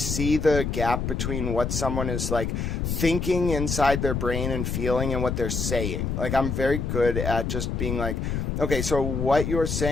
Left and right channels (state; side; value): noise; left; rumble, 2 dB below the sound